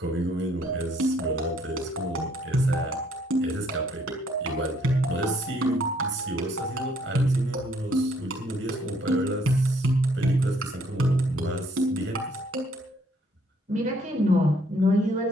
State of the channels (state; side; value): normal; both; correlation 0.66